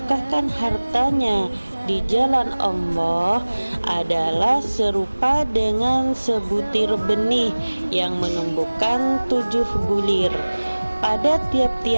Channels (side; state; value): both; inverted; correlation -1.00